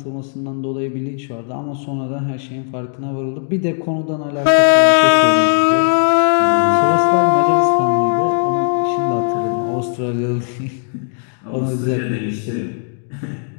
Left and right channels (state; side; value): silent; right; digital silence